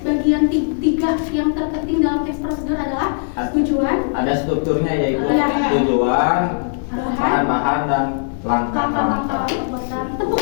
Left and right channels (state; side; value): silent; right; digital silence